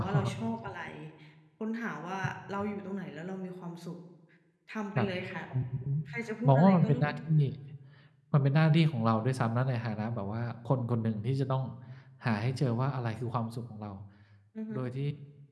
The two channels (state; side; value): identical; both; correlation 1.00